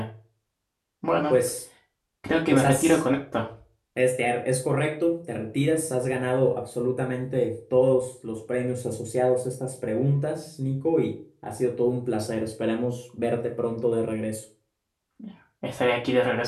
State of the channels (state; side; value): identical; both; correlation 1.00